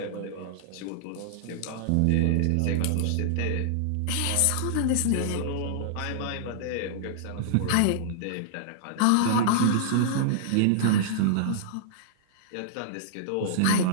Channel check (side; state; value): both; different; correlation -0.02